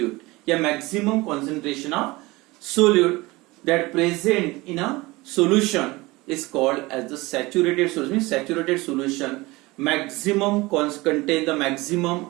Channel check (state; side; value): quieter; left; 21.8 dB